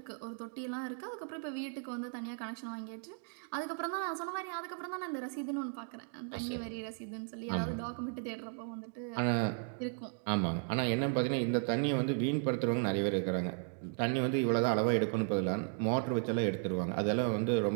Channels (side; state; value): left; silent; 54 dB below the other